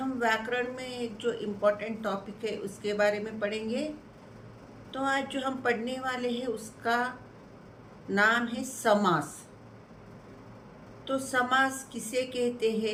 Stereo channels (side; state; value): both; identical; correlation 1.00